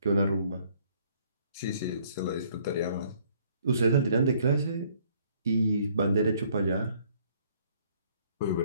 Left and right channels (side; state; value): both; inverted; correlation -0.62